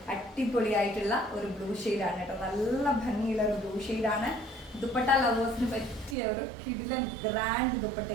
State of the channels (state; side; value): drops out; left; at 6.2 s